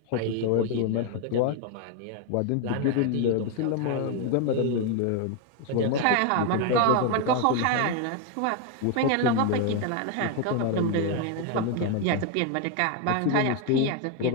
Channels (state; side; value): different; both; correlation 0.01